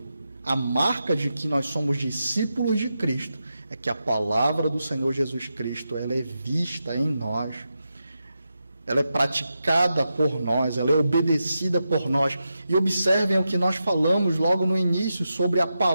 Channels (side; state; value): both; inverted; correlation -0.88